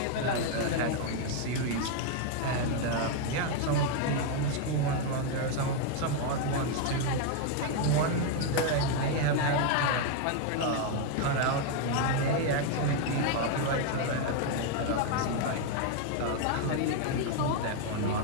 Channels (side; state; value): both; different; correlation 0.01